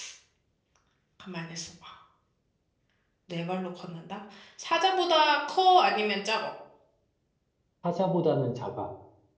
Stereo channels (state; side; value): identical; both; correlation 1.00